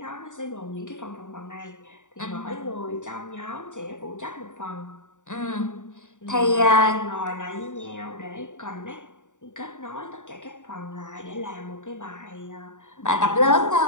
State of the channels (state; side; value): late; right; 0.86 ms